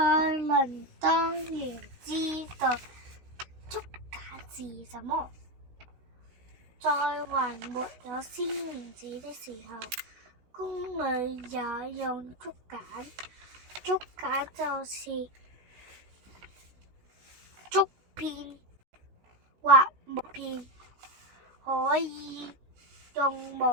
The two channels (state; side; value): late; left; 16 ms